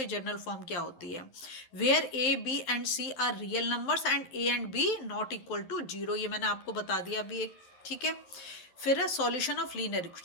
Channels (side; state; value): right; late; 11 ms